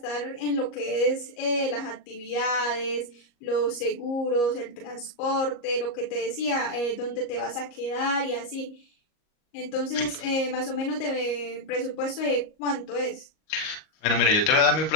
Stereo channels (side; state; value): right; late; 38 ms